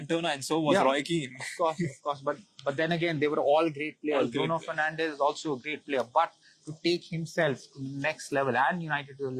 and so was Roy Keane. Of course. But then again, they were all great players. Bruno Fernandes is also a great player, but to take himself to the next level and United to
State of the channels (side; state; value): both; identical; correlation 1.00